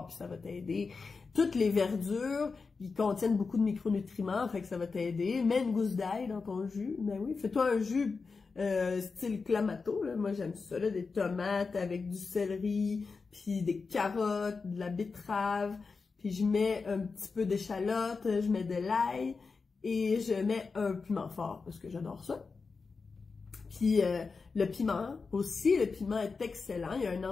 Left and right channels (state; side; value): quieter; right; 4.6 dB